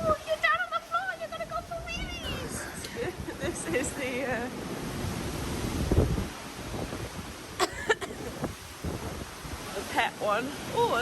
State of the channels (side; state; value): both; identical; correlation 1.00